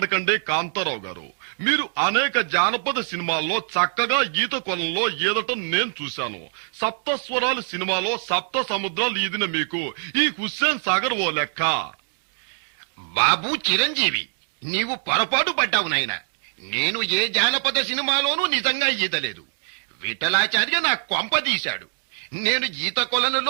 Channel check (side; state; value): left; silent; digital silence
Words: కాంతారావు గారు. మీరు అనేక జానపద సినిమాల్లో చక్కగా ఈత కొలంలో ఈదటం నేను చూశాను. సప్తస్వరాలు సినిమాలో సప్త సముద్రాలు ఈదిన మీకు ఈ హుస్సేన్ సాగర్ ఓ లెక్క. బాబు చిరంజీవి, నీవు పొరపాటు పడ్డావు నాయనా. నేను ఏ జానపద సినిమాలోనూ నిజంగా ఈదలేదు. విఠలాచార్య నా కొంప తీశాడు. నేను ఈత